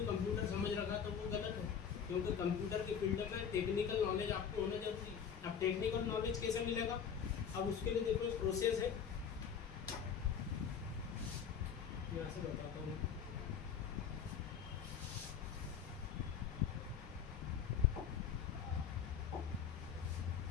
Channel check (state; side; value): quieter; right; 7.5 dB